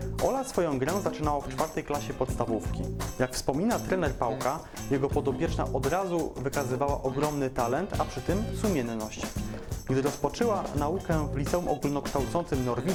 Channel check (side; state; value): both; identical; correlation 1.00